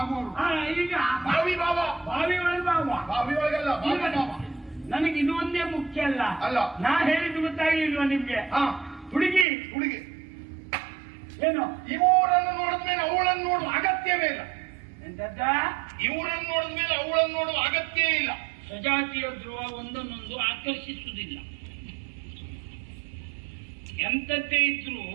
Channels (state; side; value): drops out; left; at 9.5 s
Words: ಈಗ ಬಾವಿ ಬಾವ, ಬಾವಿ ಒಳಗೆ ಬಾವ, ಬಾವಿ ಒಳಗೆಲ್ಲ ನನಗೆ ಇದು ಒಂದೇ ಮುಖ್ಯ ಅಲ್ಲ. ನಾ ಹೇಳಿದ್ದು ಗೊತ್ತಾಗಿಲ್ವಾ ನಿಮ್ಗೆ? ಹುಡುಗಿ ಏನು, ಇವರನ್ನು ನೋಡಿದ್ಮೇಲೆ ಅವಳನ್ನು ನೋಡುವ ಅಗತ್ಯವೇ ಇಲ್ಲ. ಎಂತದ್ದ? ಇವರನ್ನು ನೋಡಿದ್ಮೇಲೆ ಅವಳನ್ನು ನೋಡುವ ಅಗತ್ಯ ಇಲ್ಲ. ಸಜಾತಿಯ ಧ್ರುವ ಒಂದನ್ನೊಂದು ಆಕರ್ಷಿಸುವುದಿಲ್ಲ. ಎಂತದ್ದೇ ಇದ್ರು